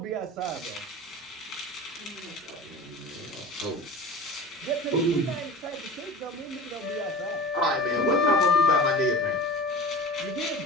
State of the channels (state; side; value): normal; both; correlation 0.36